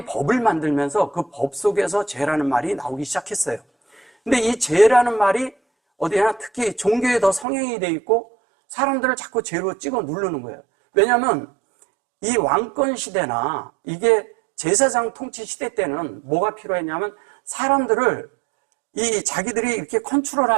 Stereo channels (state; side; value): drops out; left; at 7.5 s